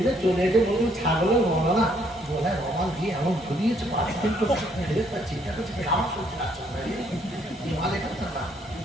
চলে এসে বলুন ছাগলের মনে না বলায় রমাল দিয়ে এমন ঘুরিয়েছে 5 দিন তো চিন্তা করছে কাম চলছে না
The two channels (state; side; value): normal; both; correlation 0.68